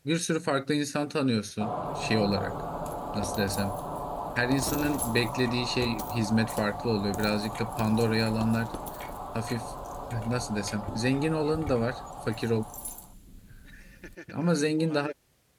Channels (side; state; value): both; identical; correlation 1.00